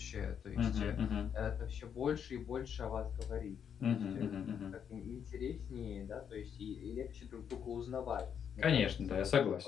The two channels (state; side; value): quieter; right; 8.0 dB